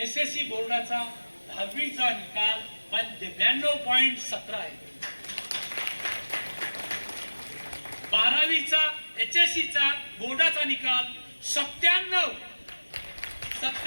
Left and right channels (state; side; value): inverted; both; correlation -1.00